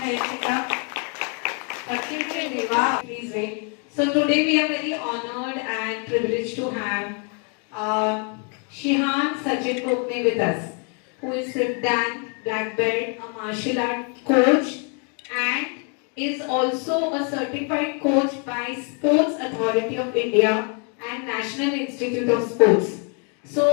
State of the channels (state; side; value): quieter; right; 38.6 dB